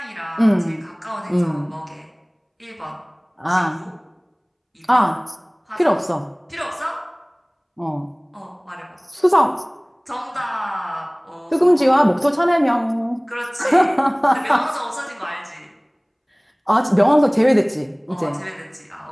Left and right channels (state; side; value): identical; both; correlation 1.00